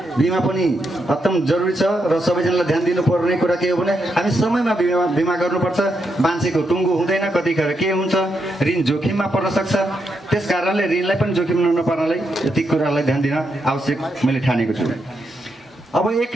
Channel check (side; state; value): both; normal; correlation 0.82